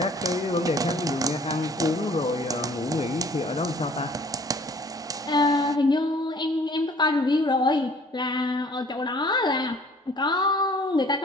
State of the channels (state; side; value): normal; both; correlation 0.54